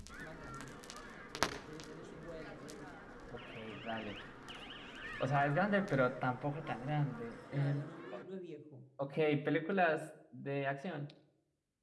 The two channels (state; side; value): identical; both; correlation 1.00